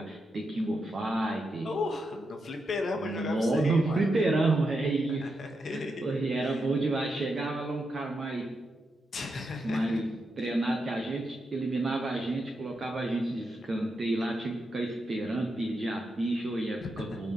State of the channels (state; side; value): normal; both; correlation 0.85